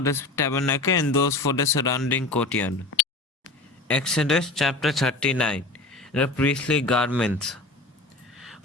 the tabernacle and those for the surrounding courtyard. Exodus chapter 39. The priestly garments.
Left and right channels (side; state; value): right; quieter; 3.1 dB